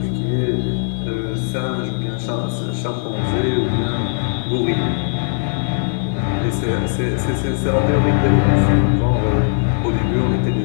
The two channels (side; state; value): right; silent; 67 dB below the other